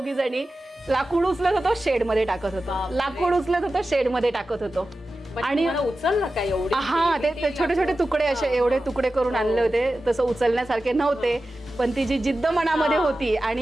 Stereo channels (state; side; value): normal; both; correlation 0.94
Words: जणी. लाकूड उचलत होतो, शेड मध्ये टाकत होतो, लाकूड उचलत होतो, शेड मध्ये टाकत होतो. आणि उचललं काय एवढे? हा, ते छोटे छोटे तुकडे असे एवढे तुकडे करून आणले होते. तसं उचलण्यासारखे नव्हते, पण ती जी जिद्द मनामध्ये होती